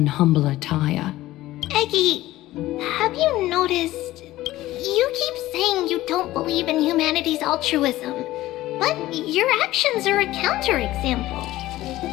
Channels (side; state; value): right; quieter; 16.3 dB